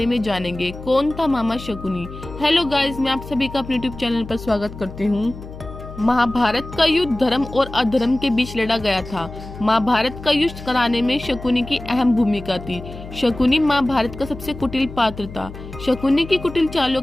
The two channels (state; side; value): noise; left; hum, 13 dB below the sound